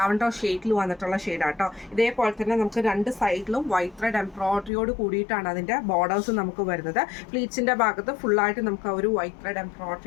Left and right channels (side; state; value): right; drops out; at 4.7 s